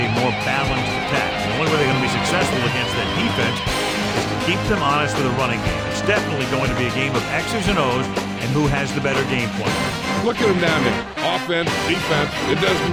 more balanced attack. The only way they're going to be successful against that defense is to keep them honest with a running game. It's definitely going to be a game of X's and O's and who has the better game plan. Look at them down there. Offense, defense, it doesn't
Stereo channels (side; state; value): both; identical; correlation 1.00